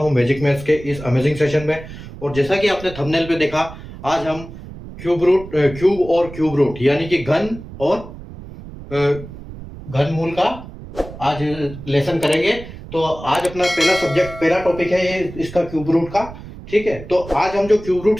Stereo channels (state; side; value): noise; right; rumble, 14 dB below the sound